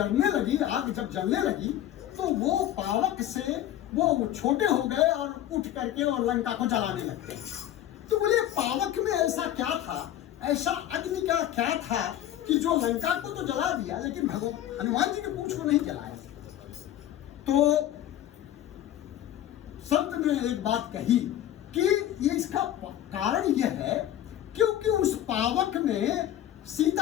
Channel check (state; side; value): quieter; right; 12.2 dB